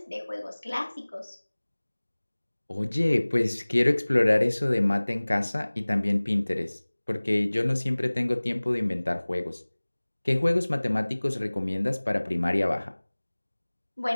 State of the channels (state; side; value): inverted; both; correlation -1.00